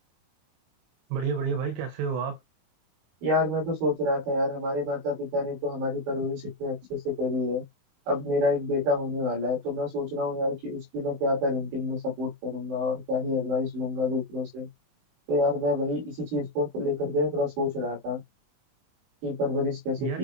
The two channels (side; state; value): left; late; 23 ms